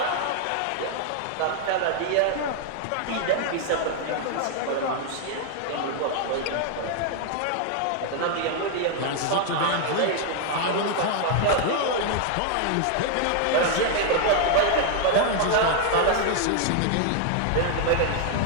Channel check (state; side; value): different; both; correlation 0.00